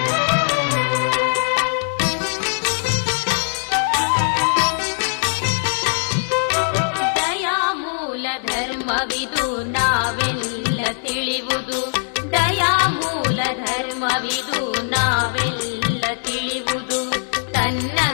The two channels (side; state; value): right; silent; digital silence